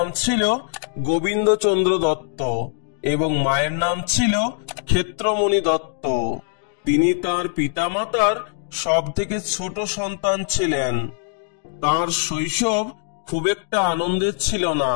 ছিল গোবিন্দচন্দ্র দত্ত এবং মায়ের নাম ছিল ক্ষেত্রমণি দত্ত। তিনি তার পিতামাতার সবথেকে ছোট সন্তান ছিলেন। তার শৈশব খুব একটা আনন্দের ছিল না,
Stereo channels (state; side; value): silent; right; 61 dB below the other